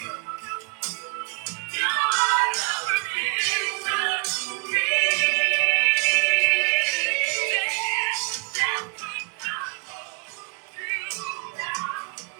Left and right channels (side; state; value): left; quieter; 34.0 dB